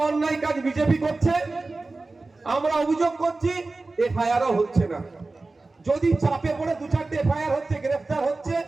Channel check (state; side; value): quieter; left; 3.4 dB